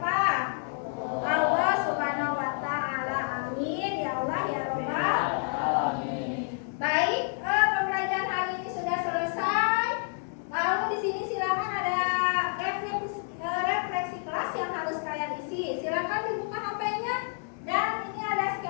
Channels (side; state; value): right; silent; 59 dB below the other